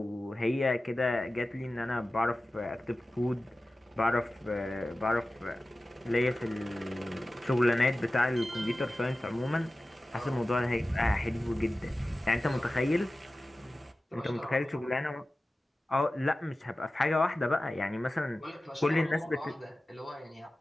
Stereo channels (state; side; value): normal; both; correlation 0.95